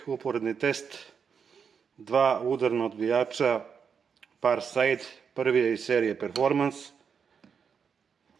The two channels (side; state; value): left; quieter; 6.6 dB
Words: uporedni test dva udarna odbijača Parside. Prvi je iz serije Performance,